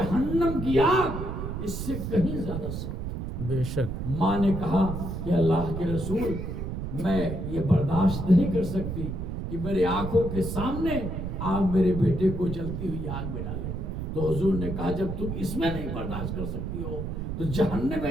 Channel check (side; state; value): right; noise; rumble, 4 dB below the sound